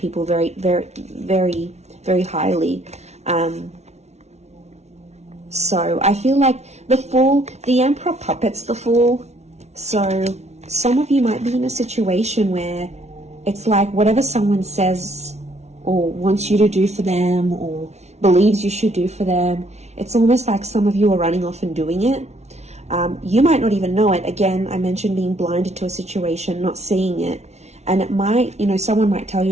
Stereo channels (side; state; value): left; late; 0.32 ms